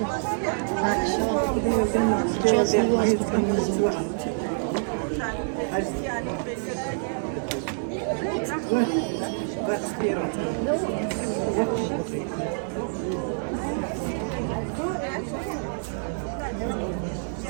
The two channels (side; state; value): left; silent; digital silence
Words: Сейчас невесту привезут.